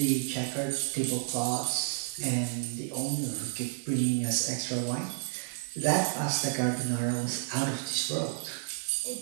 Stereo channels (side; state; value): left; silent; digital silence